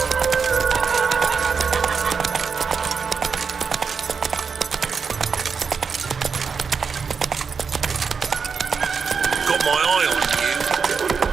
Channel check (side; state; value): left; quieter; 5.7 dB